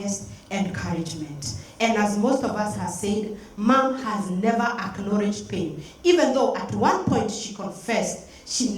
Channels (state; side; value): identical; both; correlation 1.00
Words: encouragement. And as most of us have said, Mom has never acknowledged pain. Even though at one point she confessed, she